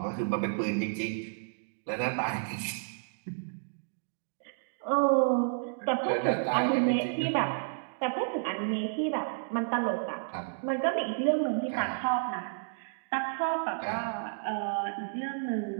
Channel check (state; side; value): silent; left; digital silence